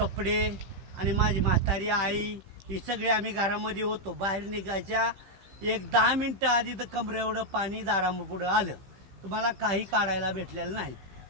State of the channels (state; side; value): late; left; 15 ms